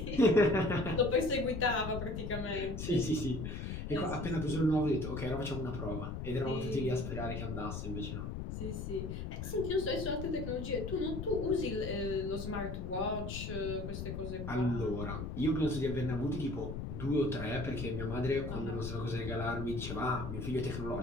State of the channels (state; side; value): noise; left; rumble, 5 dB below the sound